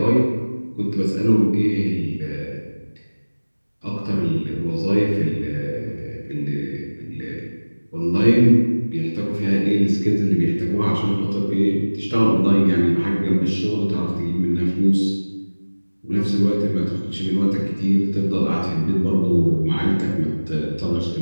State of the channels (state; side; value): inverted; both; correlation -1.00